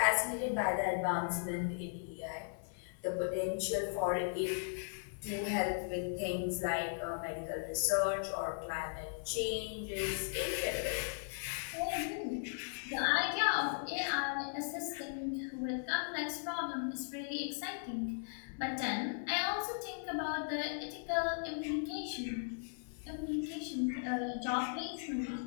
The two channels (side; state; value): right; silent; digital silence